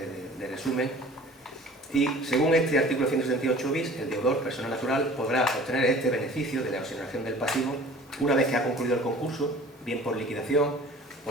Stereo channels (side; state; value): both; normal; correlation 0.46